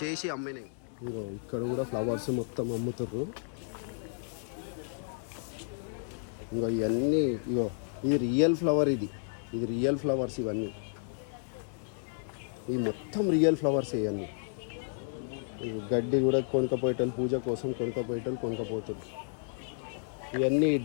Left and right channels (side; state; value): right; silent; digital silence